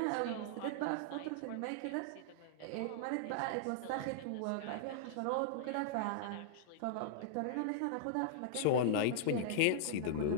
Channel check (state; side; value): different; both; correlation -0.02